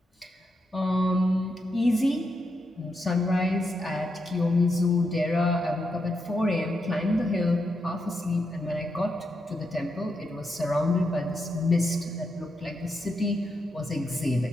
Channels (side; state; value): both; normal; correlation 0.83